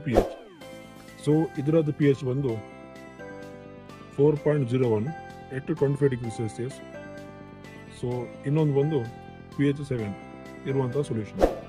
ಪಿ ಎಚ್. ಸೊ ಇದರದ್ದು ಪಿ ಎಚ್ ಬಂದು 4.01 at 25 ಡಿಗ್ರಿ ಸೆಲ್ಸಿಯಸ್. ಸೊ ಇನ್ನೊಂದು ಬಂದು ಪಿ ಎಚ್ 7 ಇರುವಂಥ ಸೊಲ್ಯೂಷನ್.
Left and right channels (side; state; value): both; identical; correlation 1.00